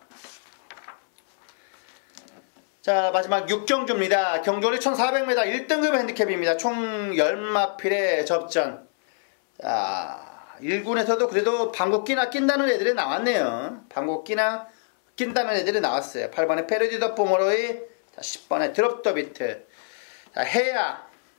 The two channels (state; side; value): silent; right; 62 dB below the other